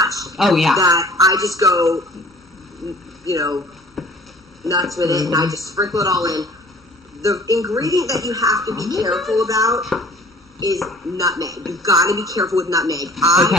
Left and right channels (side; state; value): both; normal; correlation 0.50